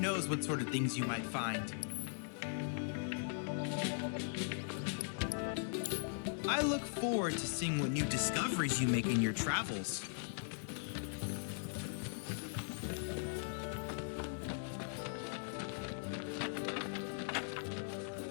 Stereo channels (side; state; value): right; silent; digital silence